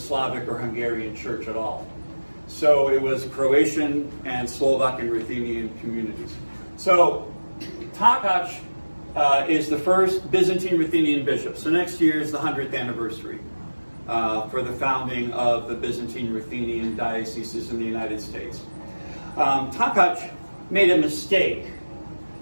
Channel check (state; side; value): inverted; both; correlation -1.00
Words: or Hungarian church at all. So it was Croatian and Slovak and Ruthenian communities. So Takacs is the first Byzantine Ruthenian bishop. So next year is the 100th anniversary for the founding of the Byzantine Ruthenian dioceses in the United States. Takacs made a mistake